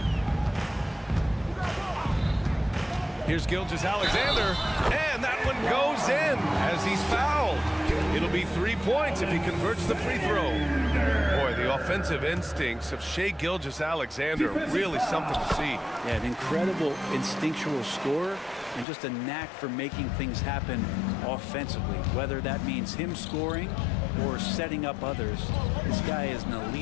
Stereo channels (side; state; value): right; drops out; at 18.9 s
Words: Here's Gilgeous-Alexander, and that one goes in as he's fouled. It'll be 3 points if he converts the free throw. Boy, the offensive instincts of Shai Gilgeous-Alexander, really something to see. Yeah, an incredible instinctual scorer and just a knack for making things happen offensively, whether that means him scoring or setting up others. This guy is an